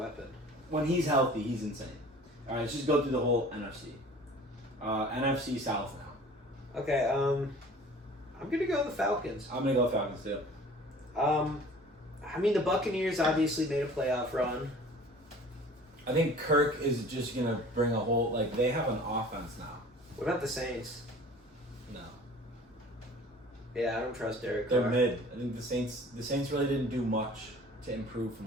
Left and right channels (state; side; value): normal; both; correlation 0.46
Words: When he's healthy, he's insane. All right, let's just go through the whole NFC. NFC South now. Okay. I'm gonna go with the Falcons. I'm gonna go Falcons too. I mean, the Buccaneers obviously made a playoff run. I think Kirk is just gonna bring a whole, like, they have an offense now. What about the Saints? No. Yeah, I don't trust Derek They're Carr. mid. I think the Saints really didn't do much to improve